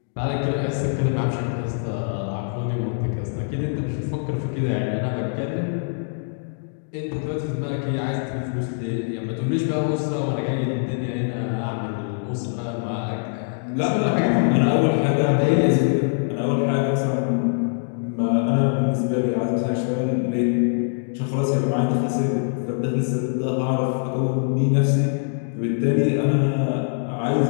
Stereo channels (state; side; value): silent; right; digital silence